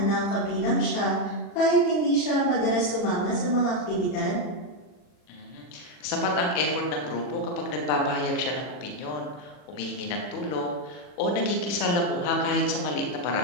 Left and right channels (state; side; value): late; right; 40 ms